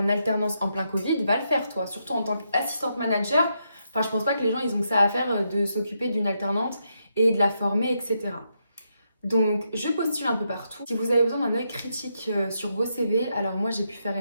alternance en plein Covid va le faire, toi. Surtout en tant qu'assistante manager. Enfin, je pense pas que les gens, ils ont que ça à faire de s'occuper d'une alternante et de la former, etc. Donc, je postule un peu partout. Si vous avez besoin d'un œil critique sur vos CV, alors moi, j'ai pu faire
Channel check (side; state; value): both; inverted; correlation -0.81